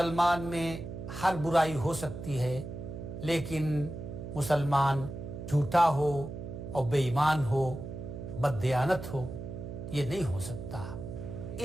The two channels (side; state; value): right; noise; hum, 9 dB below the sound